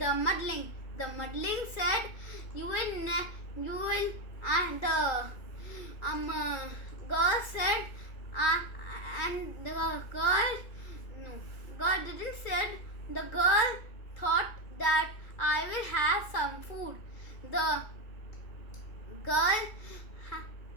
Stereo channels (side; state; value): right; late; 2.3 ms